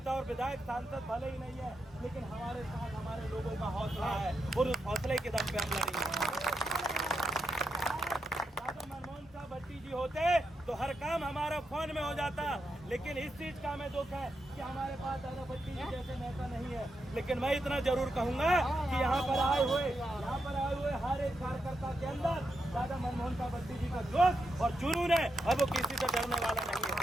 और विधायक सांसद भले ही नहीं है, लेकिन हमारे साथ हमारे लोगों का हौसला है और उस हौसले के दम पे हम लड़ेंगे। मनमोहन साहब भट्टी जी होते तो हर काम हमारा फोन में हो जाता, लेकिन इस चीज का हमें दुख है कि हमारे पास दादा भट्टी जी जैसे नेता नहीं है। लेकिन मैं इतना जरूर कहूंगा कि यहाँ पर आए हुए हर एक कार्यकर्ता के अंदर दादा मनमोहन साहब भट्टी जी का जोश और जुनून है, और वो किसी से डरने वाला नहीं है।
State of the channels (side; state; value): both; normal; correlation 0.84